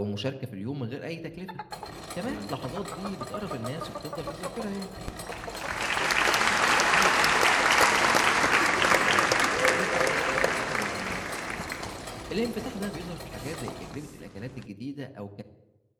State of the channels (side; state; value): both; identical; correlation 1.00